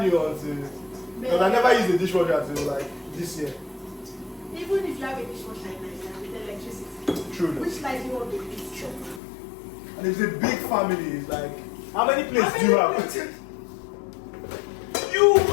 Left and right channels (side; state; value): right; drops out; at 9.2 s